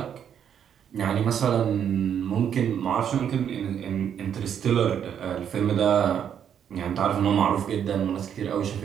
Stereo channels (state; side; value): quieter; left; 8.7 dB